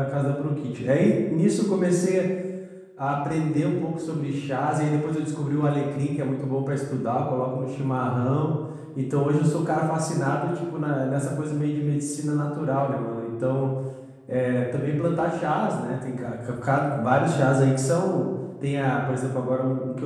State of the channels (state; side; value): identical; both; correlation 1.00